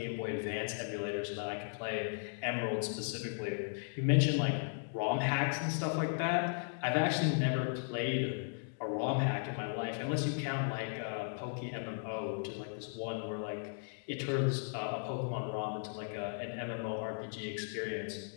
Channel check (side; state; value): right; silent; digital silence